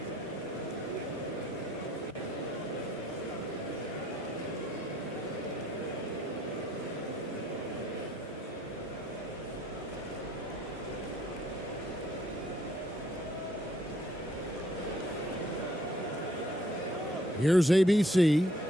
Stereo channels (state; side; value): normal; both; correlation 0.64